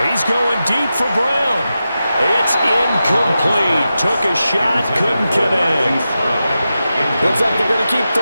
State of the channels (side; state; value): both; inverted; correlation -0.91